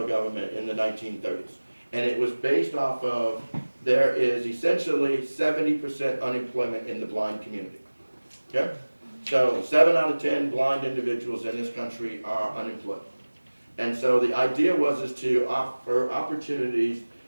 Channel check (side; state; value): both; inverted; correlation -1.00